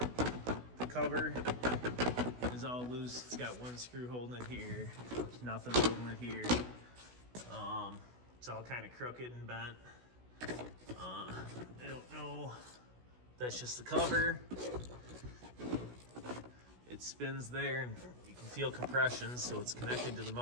cover is all loose. It's got one screw holding it here. There's nothing holding it here. It's all kind of crooked and bent. I don't know. That's just the cover. It spins there and you can feel compression, so it's connected to the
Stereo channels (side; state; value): left; late; 16 ms